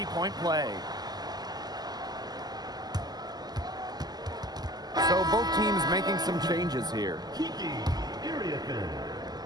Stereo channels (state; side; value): late; left; 0.20 ms